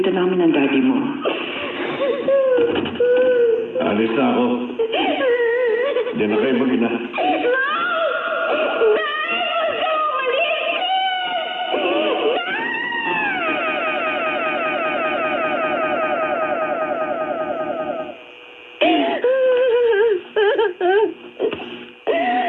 namin ng daddy mo. Alis na ako. Diyan na kayo mag-ina.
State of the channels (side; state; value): both; identical; correlation 1.00